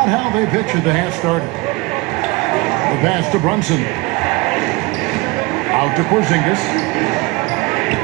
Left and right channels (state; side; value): quieter; left; 23.7 dB